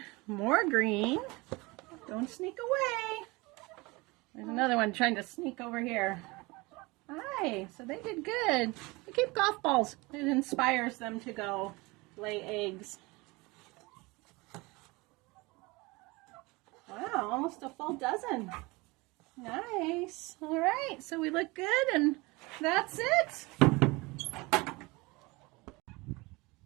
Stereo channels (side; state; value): left; quieter; 24.2 dB